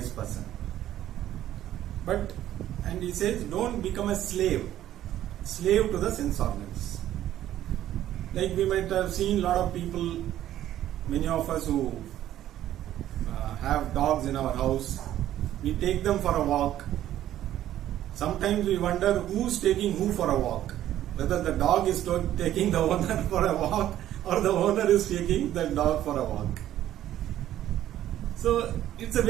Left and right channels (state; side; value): quieter; left; 12.5 dB